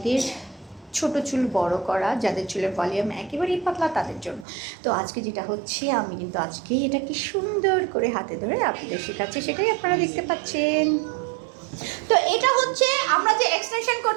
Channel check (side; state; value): left; drops out; at 4.5 s